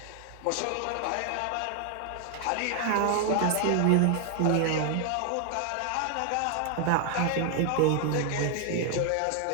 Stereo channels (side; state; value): both; different; correlation 0.00